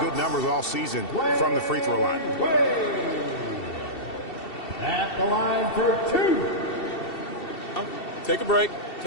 numbers all season from the free throw line. At the line for 2. Take a break.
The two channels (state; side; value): late; right; 2.7 ms